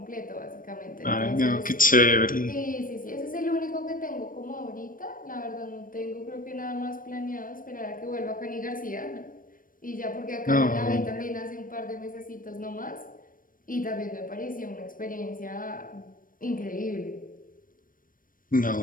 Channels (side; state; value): right; late; 0.40 ms